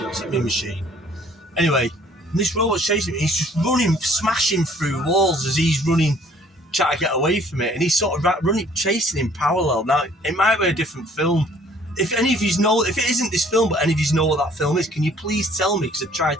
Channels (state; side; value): normal; both; correlation 0.57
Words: Mean Machine. Anyway, this robot's chasing him. He's just running, smashing through walls as he's running, trying to get away from it. And he's sort of running, chasing him parallel. Now, it might be a different film. If any of you know, if it isn't this film, but any of you know what that film is, can you please tell me? Because I've